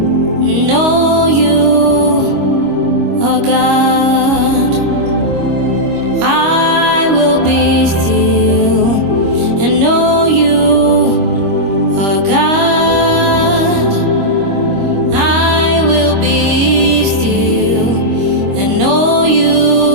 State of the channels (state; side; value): late; left; 25 ms